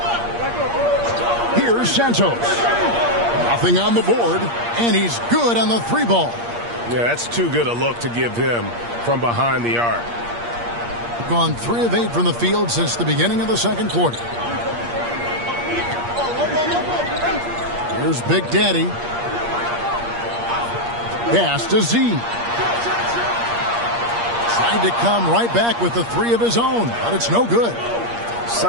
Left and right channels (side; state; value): left; late; 8.5 ms